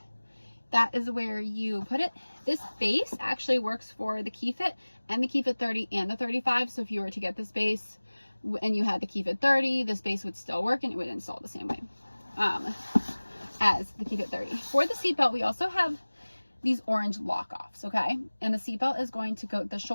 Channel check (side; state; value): both; inverted; correlation -1.00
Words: That is where you put it. This base actually works for the Keyfit and the Keyfit 30 and the 35. So if you were to get this base and you had the Keyfit 30, this base would still work and it would install the same way as the Keyfit 30. For the seatbelt, we also have these orange lock-offs, okay? And the seatbelt is going to go, the